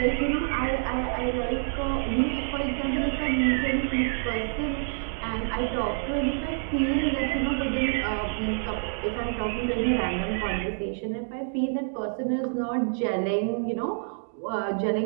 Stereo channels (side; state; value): left; silent; digital silence